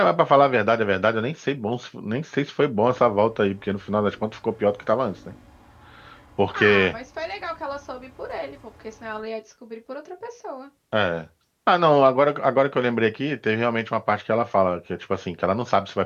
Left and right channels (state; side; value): identical; both; correlation 1.00